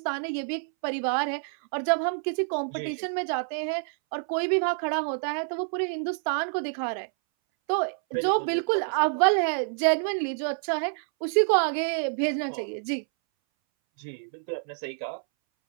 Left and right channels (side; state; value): left; silent; 60 dB below the other